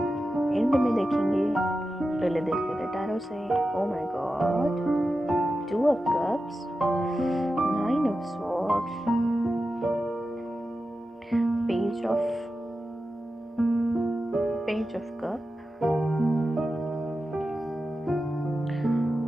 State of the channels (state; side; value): normal; both; correlation 0.92